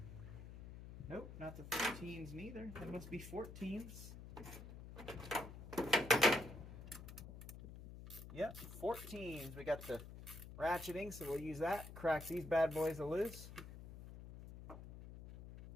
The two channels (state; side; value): noise; left; hum, 12 dB below the sound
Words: Nope, not the 13s neither. They must be 14s. Yep, 14s. We got the ratcheting, so we'll use that. Crack these bad boys loose.